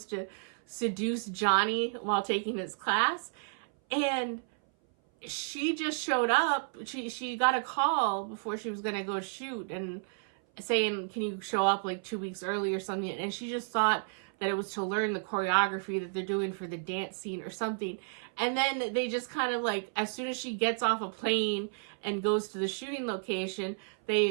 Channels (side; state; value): left; silent; 56 dB below the other